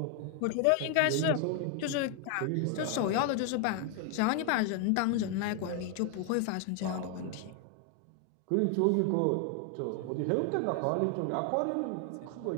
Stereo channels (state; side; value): different; both; correlation 0.00